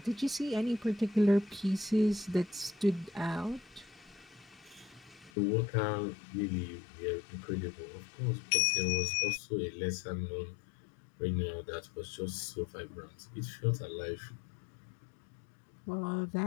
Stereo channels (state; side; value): drops out; right; at 5.3 s